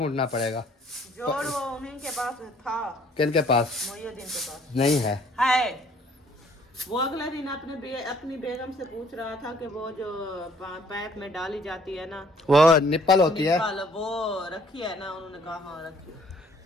पड़ेगा। जोड़ वो उन्हीं के पास था। किनके पास? मोइनुद्दीन के पास नहीं है। वो अगला दिन अपनी बेगम से पूछ रहा था कि वो जो पैप में डाली जाती है ना, वो निप्पल होती है, वो रखी है ना? उन्होंने कहा हाँ रखी है।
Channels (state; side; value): normal; both; correlation 0.60